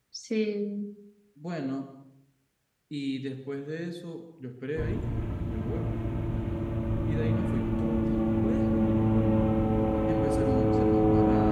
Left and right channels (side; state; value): both; identical; correlation 1.00